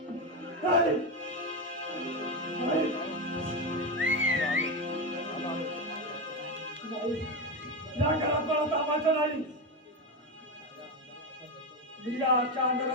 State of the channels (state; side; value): normal; both; correlation 0.13